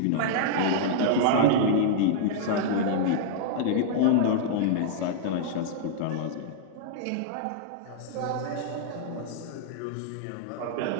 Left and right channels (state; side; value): different; both; correlation -0.01